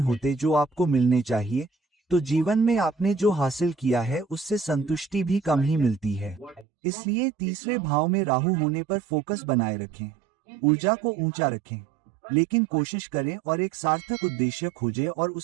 होते जो आपको मिलने चाहिए। तो जीवन में आपने जो हासिल किया है उससे संतुष्टि भी कम ही मिलती है। इसलिए तीसरे भाव में राहु होने पर फोकस बनाए रखें, ऊर्जा को ऊंचा रखें, लेकिन कोशिश करें और एक सार्थक उद्देश्य खोजें और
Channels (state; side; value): drops out; left; at 6.7 s